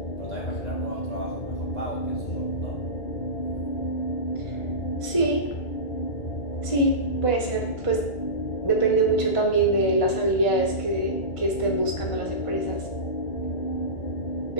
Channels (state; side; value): late; right; 1.5 ms